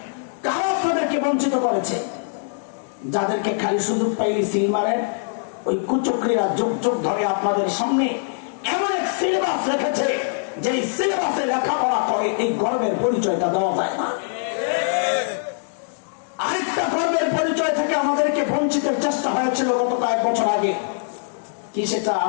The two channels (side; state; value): right; silent; digital silence